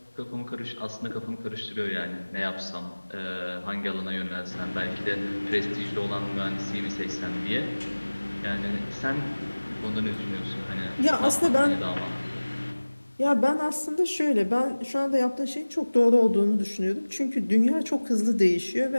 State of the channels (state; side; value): inverted; both; correlation -1.00